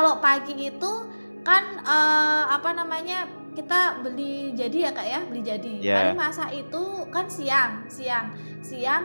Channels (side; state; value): both; inverted; correlation -1.00